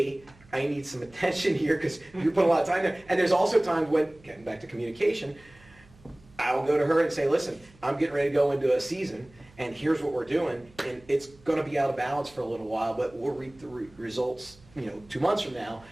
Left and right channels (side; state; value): right; noise; hum, 27 dB below the sound